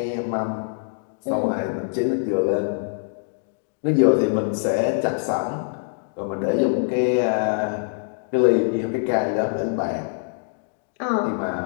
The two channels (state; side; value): silent; right; digital silence